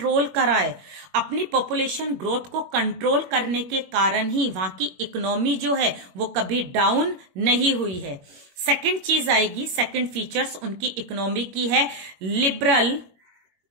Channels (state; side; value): late; left; 21 ms